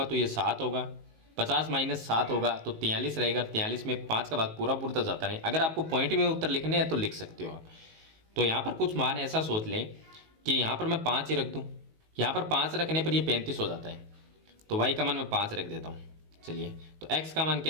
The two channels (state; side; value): late; left; 19 ms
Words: तो ये 7 होगा, 50 माइनस 7 होगा तो 43 रहेगा। 43 में 5 का भाग पूरा तो जाता नहीं। अगर आपको पॉइंट में उत्तर लिखने हैं तो लिख सकते हो आप। तो यहाँ पर कुछ मान ऐसा सोच लें कि यहाँ पर मैं 5 ही रख दूँ, यहाँ पर 5 रखने पर ये 35 हो जाता है, तो y का मान मैं 5 रख देता हूँ। चलिए, तो x का मान